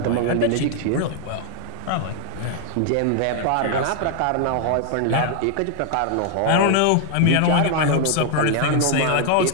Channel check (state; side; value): different; both; correlation 0.00